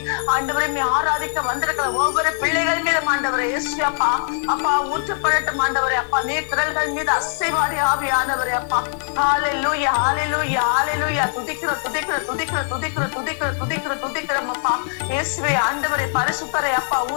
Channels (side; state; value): right; silent; 65 dB below the other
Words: ஆண்டவரே மே ஆராதிக்க வந்திருக்கிற ஒவ்வொரு பிள்ளைகள் மீதும் ஆண்டவரே இயேசுவே அப்பா அப்பா ஊற்றப்படட்டும் ஆண்டவரே. அப்பா நீர் திரள்கள் மீது அசைவாடி ஆவியானவரே. அப்பா ஹல்லேலூயா ஹல்லேலூயா ஹல்லேலூயா. துதிக்கிறோம் துதிக்கிறோம் துதிக்கிறோம் துதிக்கிறோம் துதிக்கிறோம் துதிக்கிறோம் துதிக்கிறோம் அப்பா. இயேசுவே ஆண்டவரே பரிசுத்தரே அப்பா